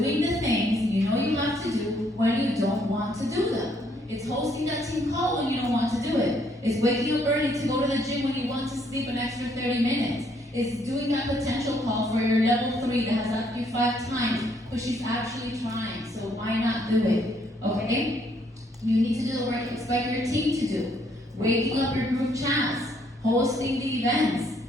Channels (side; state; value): both; normal; correlation 0.69